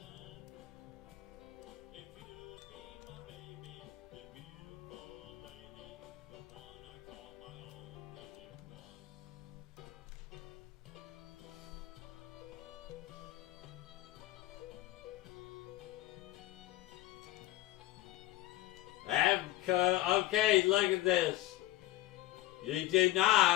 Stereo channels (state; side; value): quieter; right; 16.5 dB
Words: Okay, look at this. You do